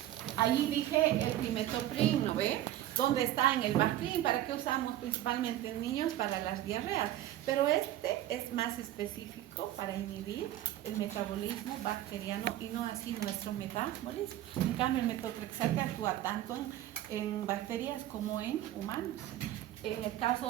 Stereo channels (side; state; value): left; quieter; 13.5 dB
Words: Ahí dije el trimetoprim, ¿no ve? ¿Dónde está? En el Bactrim. ¿Para qué usamos principalmente en niños? Para las diarreas. Pero este es más específico para inhibir el metabolismo bacteriano y no así nuestro metabolismo. En cambio, el metotrexato actúa tanto en bacterias como en humanos. En el